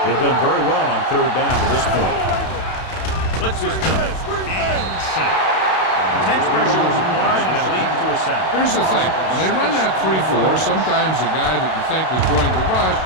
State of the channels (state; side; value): late; right; 32 ms